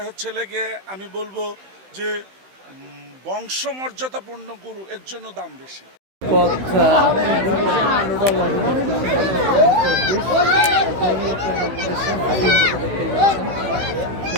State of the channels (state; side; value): late; left; 16 ms